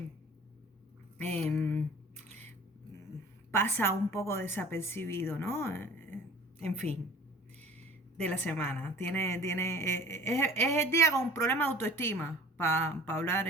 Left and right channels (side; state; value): both; normal; correlation 0.45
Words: em, pasa un poco desapercibido, ¿no? En fin, de la semana. Es el día con un problema de autoestima, para hablar